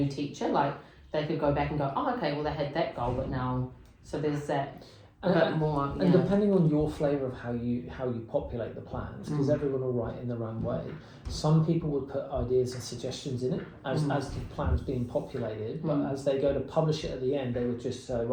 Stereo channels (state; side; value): identical; both; correlation 1.00